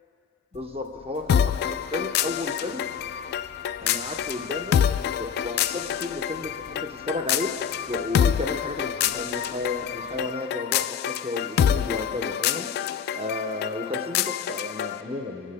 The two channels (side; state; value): right; quieter; 7.1 dB